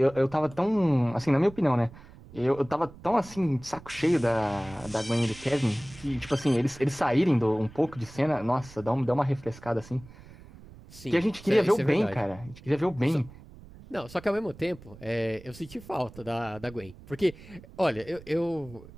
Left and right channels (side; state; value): right; noise; rumble, 19 dB below the sound